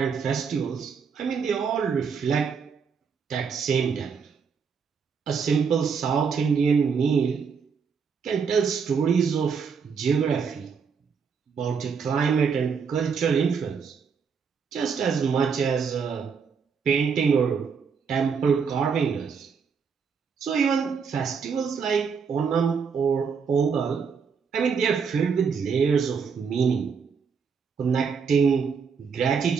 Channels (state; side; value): quieter; left; 6.1 dB